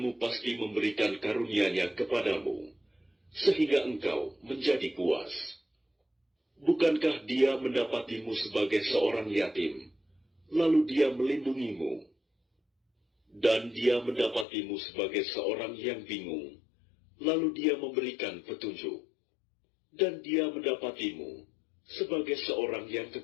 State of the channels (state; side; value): drops out; right; at 14.5 s